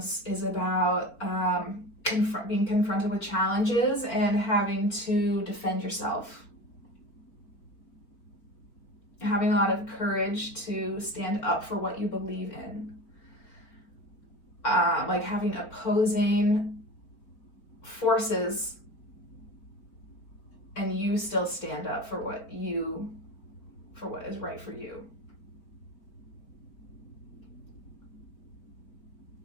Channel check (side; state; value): right; late; 4.4 ms